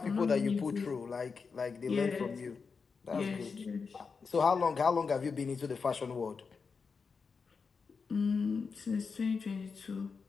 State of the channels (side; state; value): right; quieter; 5.2 dB